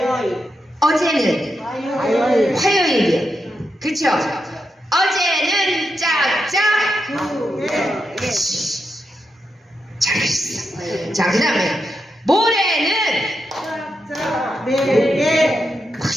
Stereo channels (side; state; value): both; normal; correlation 0.85